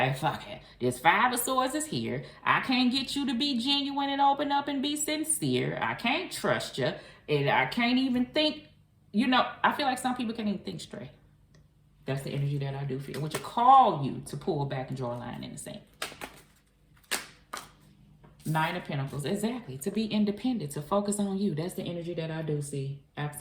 fuck it, this Five of Swords is here. I can't get you to be genuine and open up and be sincere. I can't trust you. And I can't even think, you know, I feel like some people can't even think straight. That's the energy that I do feel, which will call you to pull back and draw a line in the sand. Nine of Pentacles, exactly. To be independent, to focus on you. That's the energy that I do see.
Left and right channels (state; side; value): identical; both; correlation 1.00